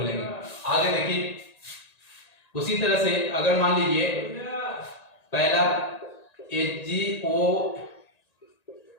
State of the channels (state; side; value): late; right; 1.9 ms